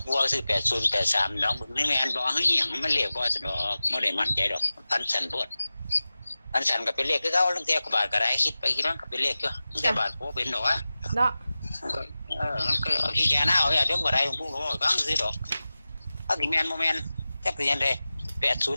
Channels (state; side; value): inverted; both; correlation -0.96